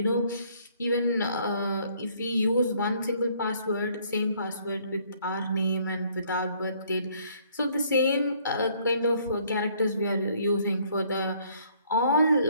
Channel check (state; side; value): inverted; both; correlation -0.64